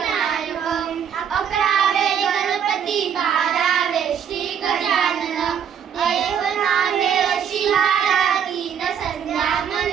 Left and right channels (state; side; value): quieter; left; 8.1 dB